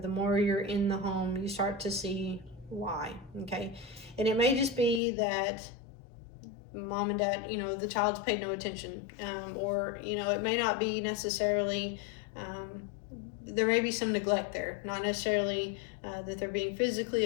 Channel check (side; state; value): right; drops out; at 5.0 s